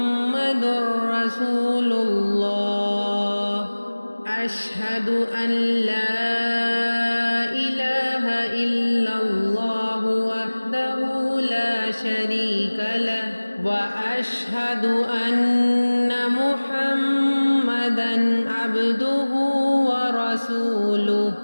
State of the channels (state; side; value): inverted; both; correlation -1.00